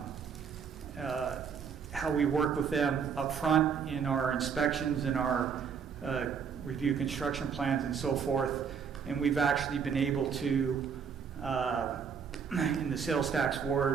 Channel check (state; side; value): quieter; left; 6.7 dB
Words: how we work with them up front in our inspections and our review construction plans and so forth. And we've actually been able to, in the sales tax